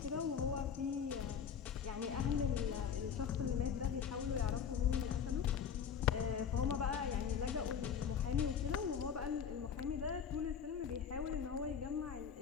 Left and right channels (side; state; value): right; quieter; 7.4 dB